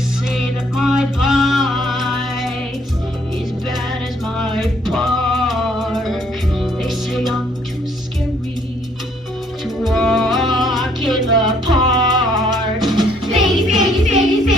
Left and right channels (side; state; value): both; normal; correlation 0.65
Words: that my bite is bad as my bark. They say I'm too scary to walk in the park. Piggies, piggies, piggies,